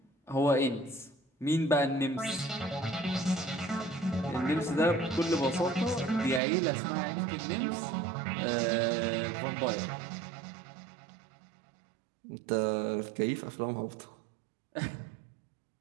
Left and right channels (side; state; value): left; drops out; at 6.4 s